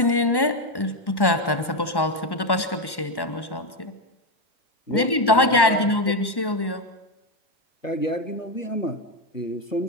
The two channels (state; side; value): late; right; 1.1 ms